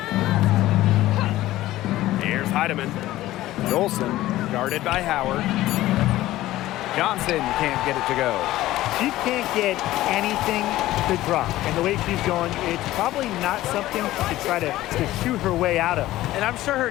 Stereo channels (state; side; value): quieter; right; 15.7 dB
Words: Here's Heidemann. Dolson guarded by Howard. Johnson can't get it to go. She can't get anything to drop. And the way she's going, it's probably not something to try to shoot her way out of. And I'm sure her